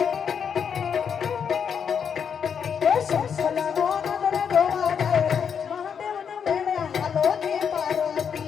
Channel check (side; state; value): right; quieter; 7.3 dB